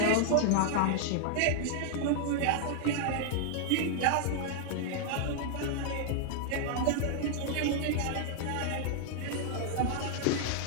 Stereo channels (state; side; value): different; both; correlation -0.01